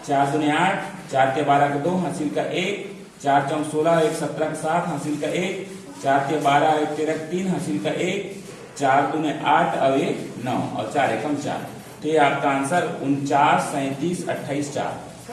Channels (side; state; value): both; identical; correlation 1.00